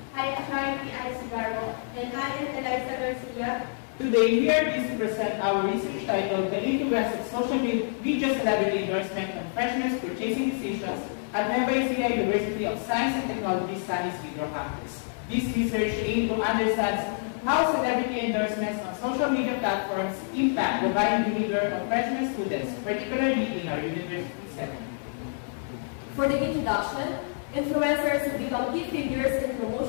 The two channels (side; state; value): right; silent; 60 dB below the other